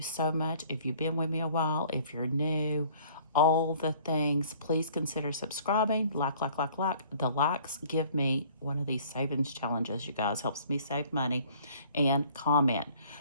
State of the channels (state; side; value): inverted; both; correlation -0.53